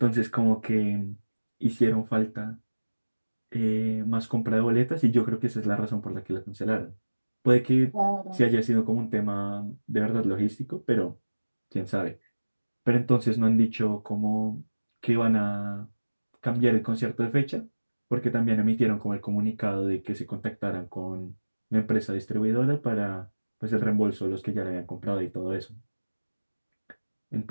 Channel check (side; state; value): both; inverted; correlation -1.00